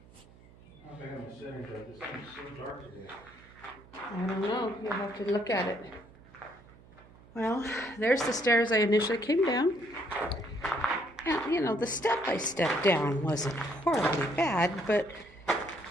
I think I'm sitting there. This thing's so dark today. I don't know. You'll have to look at it. Well, there's the stairs I initially came down. Now, you know, the step I stepped down wasn't horribly bad, but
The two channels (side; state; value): right; noise; hum, 24 dB below the sound